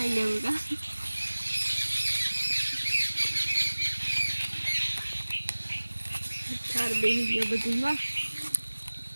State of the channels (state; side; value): inverted; both; correlation -1.00